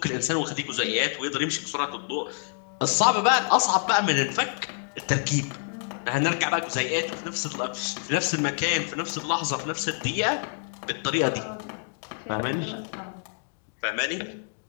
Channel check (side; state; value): right; silent; digital silence